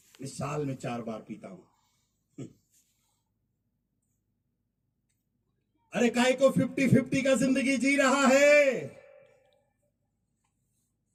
मैं साल में 4 बार पीता हूं। अरे काहे को 50-50 का जिंदगी जी रहा है?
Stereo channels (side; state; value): both; identical; correlation 1.00